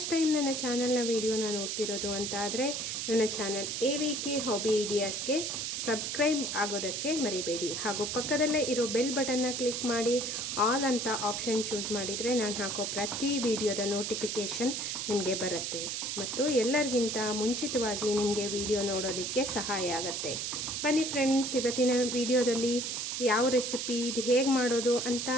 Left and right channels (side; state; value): right; noise; hiss, 3 dB below the sound